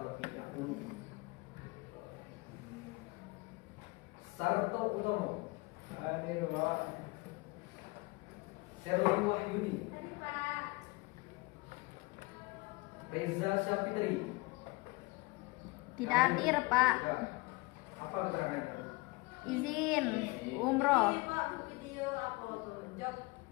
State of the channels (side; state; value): right; quieter; 24.6 dB